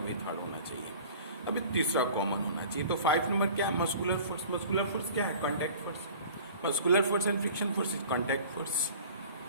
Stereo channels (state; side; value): inverted; both; correlation -0.44